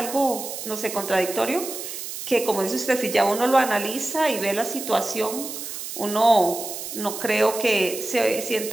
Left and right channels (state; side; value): noise; right; hiss, 8 dB below the sound